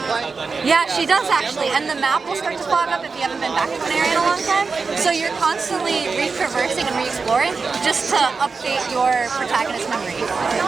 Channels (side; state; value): left; quieter; 4.6 dB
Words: play? Yeah, she does actually, and the map will start to fog up if you haven't been back to an area in a long time. So you're constantly re-traversing and re-exploring just to update your protagonist's memory.